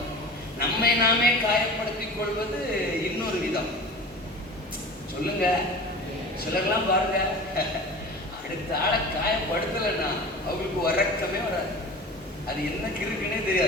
நம்மை நாமே காயப்படுத்திக் கொள்வது இன்னொரு விதம். சொல்லுங்க. சிலர்லாம் பாருங்க, அடுத்த ஆளை காயப்படுத்தலைன்னா அவங்களுக்கு வரக்கமே வராது. அது என்ன கிருக்குன்னே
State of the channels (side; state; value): both; normal; correlation 0.37